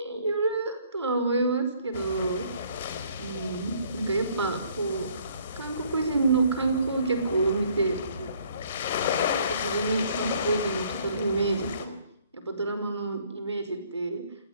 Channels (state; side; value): inverted; both; correlation -0.61